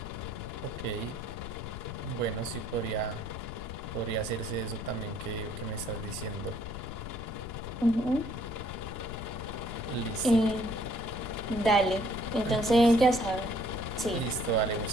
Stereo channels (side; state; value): left; noise; rumble, 8 dB below the sound